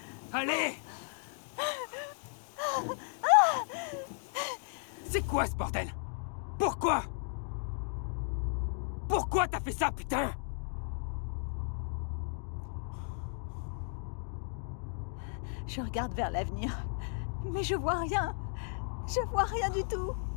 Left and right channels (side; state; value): right; silent; 55 dB below the other